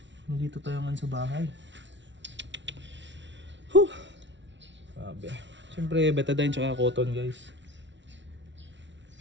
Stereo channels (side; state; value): left; late; 0.53 ms